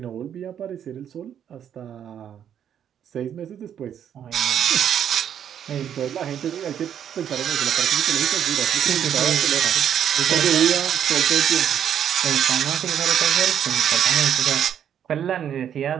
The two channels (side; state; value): left; quieter; 9.2 dB